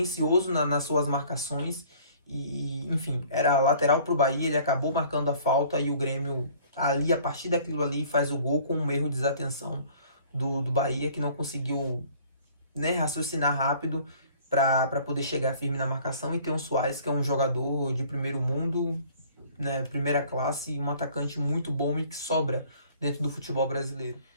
nas suas marcações. E, enfim, era lateral para o Bahia, ele acabou marcando a falta e o Grêmio, ali, a partir daquilo ali, faz o gol com um erro de desatenção do Bahia, que não conseguiu, né, raciocinar rápido para poder chegar firme na marcação, e ter um Suárez, que é um jogador de primeiro mundo, né, primeira classe, um atacante muito bom e que sobra dentro do futebol brasileiro.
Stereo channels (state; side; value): inverted; both; correlation -0.53